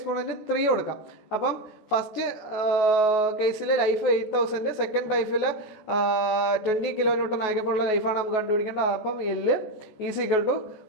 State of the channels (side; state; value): right; late; 14 ms